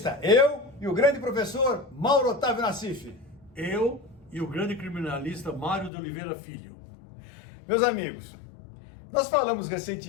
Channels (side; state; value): right; drops out; at 5.9 s